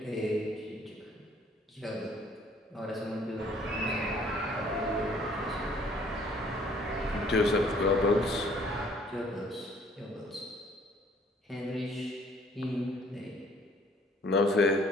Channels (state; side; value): normal; both; correlation 0.59